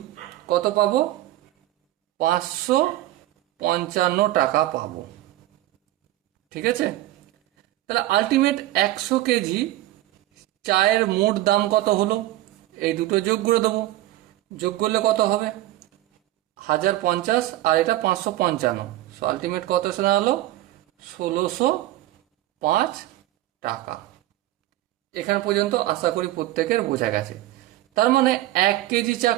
কত পাবো? 555 টাকা পাবো। ঠিক আছে? তাহলে আলটিমেট 100 কেজি চায়ের মোট দাম কত হলো? এই দুটো যোগ করে দেবো। যোগ করলে কত হবে? 1050 আর এটা 555। সো আলটিমেট কত এসে দাঁড়ালো? 1605 টাকা। এখান পর্যন্ত আশা করি প্রত্যেকের বোঝা গেছে। তার মানে 1 কেজি চা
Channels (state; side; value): quieter; left; 15.5 dB